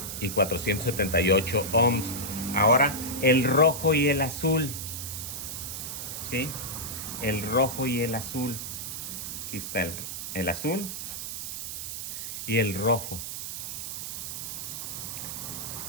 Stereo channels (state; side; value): noise; right; hiss, 6 dB below the sound